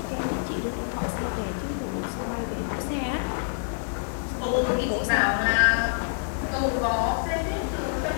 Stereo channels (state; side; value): silent; right; 60 dB below the other